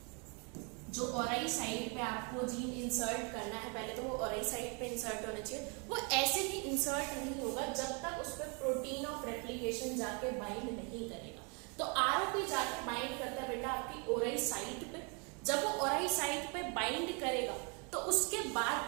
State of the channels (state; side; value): quieter; left; 34.8 dB